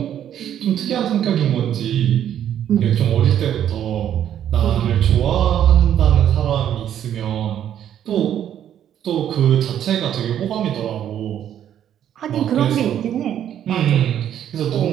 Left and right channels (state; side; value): quieter; left; 10.3 dB